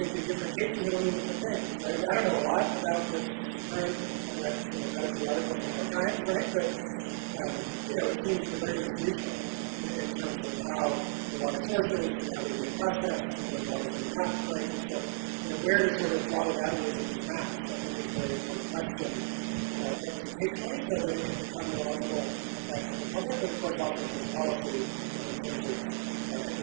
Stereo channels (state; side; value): silent; left; digital silence